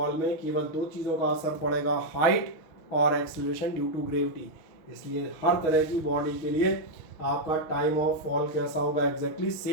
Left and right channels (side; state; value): right; late; 6.3 ms